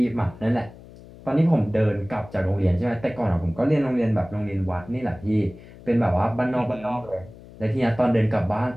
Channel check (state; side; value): noise; left; hum, 19 dB below the sound